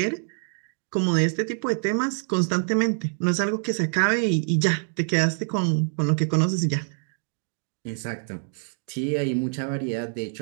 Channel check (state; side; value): silent; left; 61 dB below the other